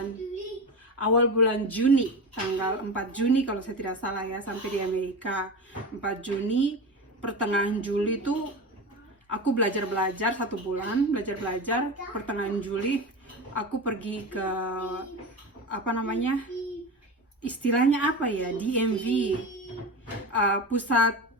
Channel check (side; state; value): both; normal; correlation 0.25